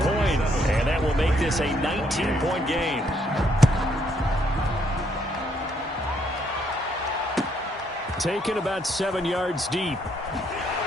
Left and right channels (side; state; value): both; normal; correlation 0.71